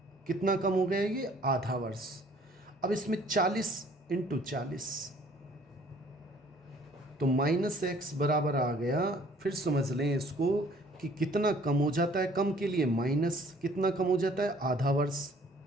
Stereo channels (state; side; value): normal; both; correlation 0.57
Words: कितना कम हो गया ये? आधा वर्ष। अब इसमें 40 इंटू 40, तो -x बराबर आ गया। फिर समझ लें इसको कि कितना कम हो जाता है, कम के लिए माइनस, कितना कम हो जाता है? आधा वर्ष।